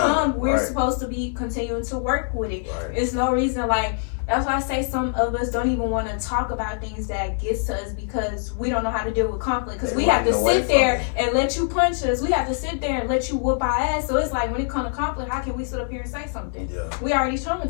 we're supposed to be continuing to work with it. It's no reason, like, that's why I say some of us don't even want to talk about things that gets to us because we don't know how to deal with conflict. Because we have to sit there and let you punch us. We have to sit there and let you whoop our ass. So it's like, when it comes to conflict, how can we sit up here and say something? We already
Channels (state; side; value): silent; right; 59 dB below the other